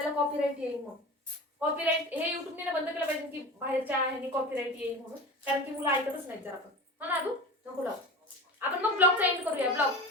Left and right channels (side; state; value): both; normal; correlation 0.32